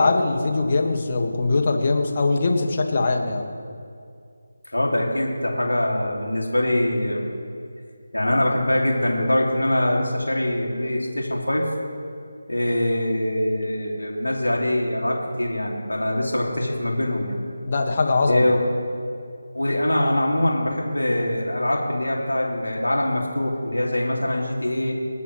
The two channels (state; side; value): inverted; both; correlation -0.95